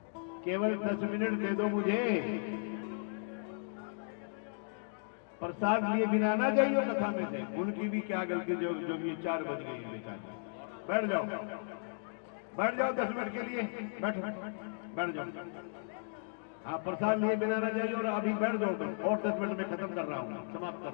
केवल 10 मिनट दे दो मुझे, प्रसाद लिए बिना ना जाइयो कथा में से। उनकी भी क्या गलती जो ये 4 बज गई बेचारी। बैठ जाओ, बैठ जाओ 10 मिनट के लिए, बैठो, बैठ जाओ। हाँ, प्रसाद लिए बिना ना जाइए और अभी बैठ जाओ तुम, और 10 मिनट में खत्म कर रहा हूँ, समाप्त कर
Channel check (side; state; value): right; silent; digital silence